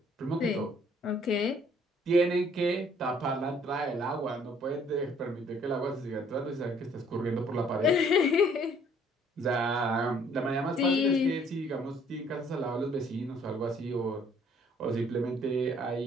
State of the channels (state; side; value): normal; both; correlation 0.61